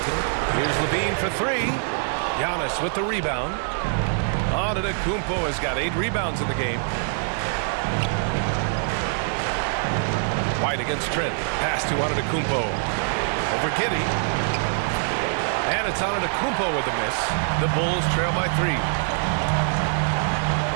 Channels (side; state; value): left; silent; 62 dB below the other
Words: Here's Levine for 3. Giannis with the rebound. Antetokounmpo has got 8 rebounds in the game. White against Trent. Pass to Antetokounmpo. Over Giddey. And it's Antetokounmpo with the miss. The Bulls trail by 3.